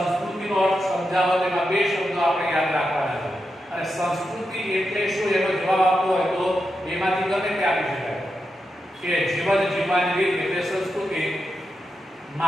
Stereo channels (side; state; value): both; normal; correlation 0.87